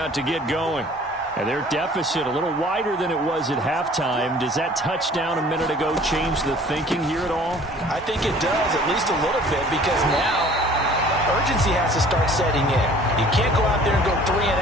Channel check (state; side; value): normal; both; correlation 0.51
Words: to get going. And their deficit a little wider than it was at halftime. Does that touchdown a minute ago change the thinking here at all? I think it does, at least a little bit, because now urgency has to start setting in. You can't go out there and go 3 and